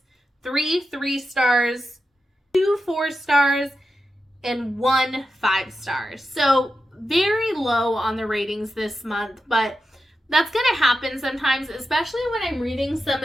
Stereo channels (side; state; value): both; normal; correlation 0.90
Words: 3 3-stars, 2 4-stars, and 1 5-star. So very low on the ratings this month, but that's going to happen sometimes, especially when I'm reading some